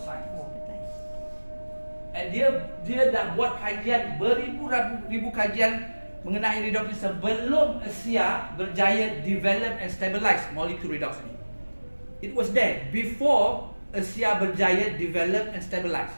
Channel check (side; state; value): both; inverted; correlation -1.00